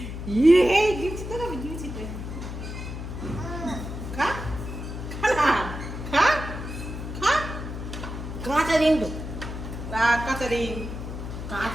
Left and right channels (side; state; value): left; noise; hum, 7 dB below the sound